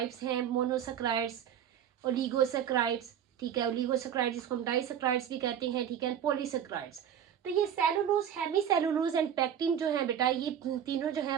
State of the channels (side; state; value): left; quieter; 9.2 dB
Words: हैं, मोनोसेकेराइड्स, ओलिगोसेकेराइड्स, ठीक है, ओलिगोसेकेराइड्स जिसको हम डाइसेकेराइड्स भी कहते हैं, ठीक है, पॉलीसेकेराइड्स। तो ये सेलुलोज, हेमीसेलुलोज एंड पेक्टिन जो है बेटा, ये तीनों जो